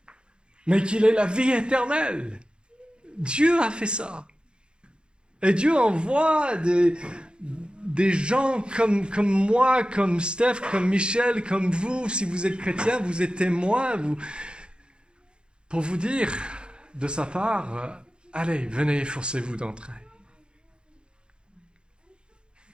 mais qu'il ait la vie éternelle. Dieu a fait ça. Et Dieu envoie des gens comme moi, comme Steph, comme Michel, comme vous, si vous êtes chrétien, vous êtes témoins, pour vous dire de sa part, allez, venez, efforcez-vous d'entrer.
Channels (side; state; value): left; late; 0.052 ms